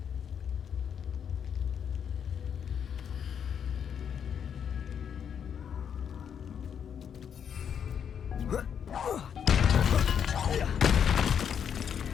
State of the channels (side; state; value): right; quieter; 8.0 dB